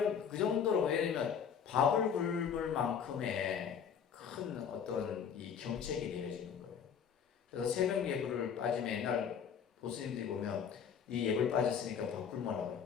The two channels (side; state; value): right; quieter; 7.4 dB